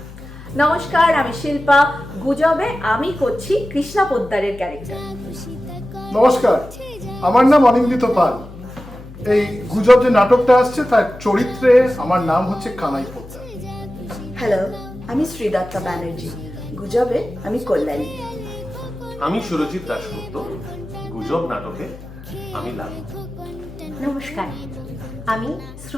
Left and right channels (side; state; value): left; noise; hum, 16 dB below the sound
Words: নমস্কার, আমি শিল্পা। গুজবে আমি করছি কৃষ্ণা পোদ্দারের ক্যারেক্টার। নমস্কার, আমার নাম অনিন্দিত পাল। এই গুজব যে নাটকটা আসছে তার চরিত্রে আমার নাম হচ্ছে কানাই পোদ্দার। হ্যালো, আমি শ্রীদত্তা ব্যানার্জি। গুজবে আমি কল্যাণী। আমি সুরজিৎ দাশগুপ্ত। গুজব নাটকে আমি লালু। নমস্কার, আমি